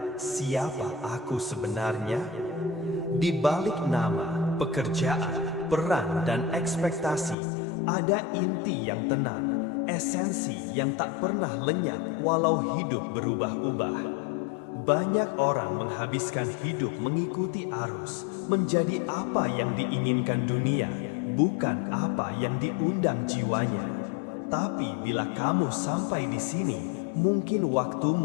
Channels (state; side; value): drops out; right; at 7.4 s